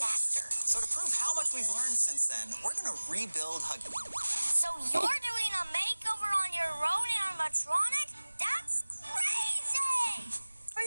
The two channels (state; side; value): inverted; both; correlation -1.00